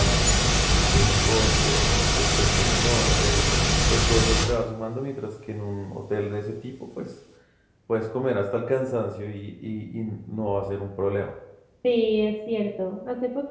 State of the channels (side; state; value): both; identical; correlation 1.00